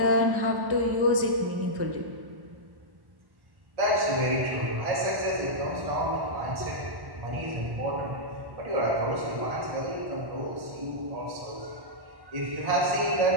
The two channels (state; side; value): late; left; 1.1 ms